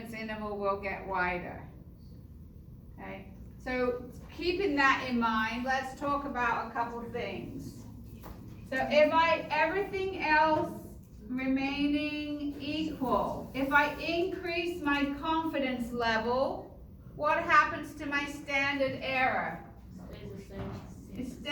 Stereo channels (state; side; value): identical; both; correlation 1.00